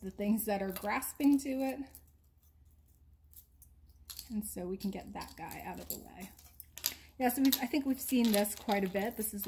the things that are grasping to it. And so we can get that guy out of the way. Yeah, so I think we've seen this quite a bit. This is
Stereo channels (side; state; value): both; identical; correlation 1.00